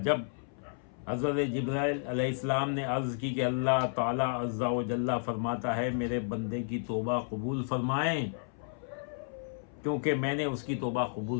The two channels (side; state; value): right; silent; 56 dB below the other